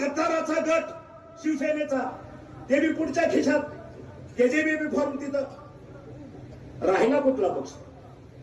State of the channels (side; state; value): both; identical; correlation 1.00